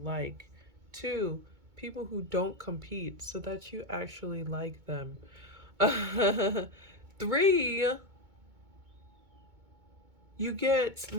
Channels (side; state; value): left; late; 2.2 ms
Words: two, people who don't compete so that you actually like them, three, you get